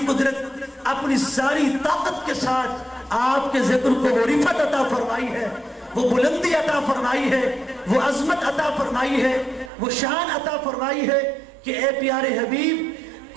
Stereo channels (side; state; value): left; drops out; at 9.7 s